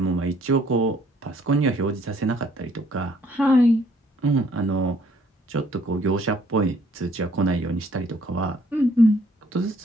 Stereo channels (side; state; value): both; normal; correlation 0.63